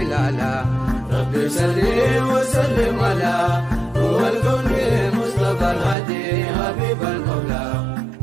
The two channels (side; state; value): left; drops out; at 6.0 s